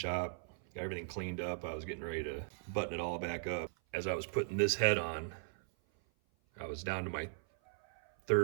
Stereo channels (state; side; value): silent; left; 53 dB below the other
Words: got everything cleaned up. I was getting ready to button it all back up. As I was putting this head on, I was down to my